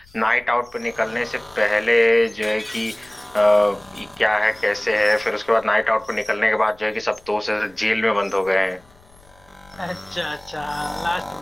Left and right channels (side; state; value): left; noise; rumble, 27 dB below the sound